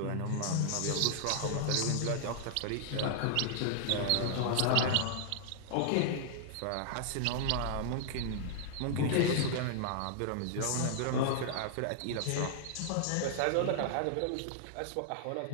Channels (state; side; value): different; both; correlation -0.01